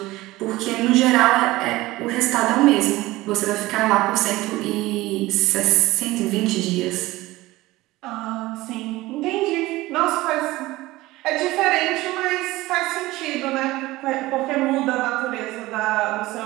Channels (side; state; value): left; quieter; 18.7 dB